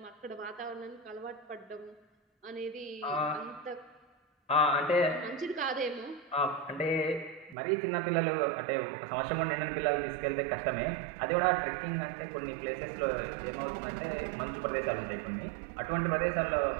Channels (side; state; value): left; drops out; at 7.6 s